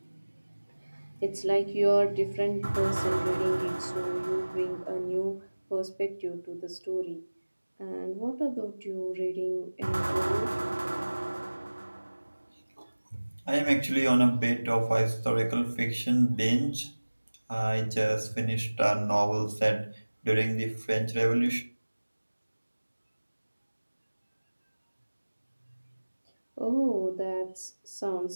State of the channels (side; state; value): both; inverted; correlation -1.00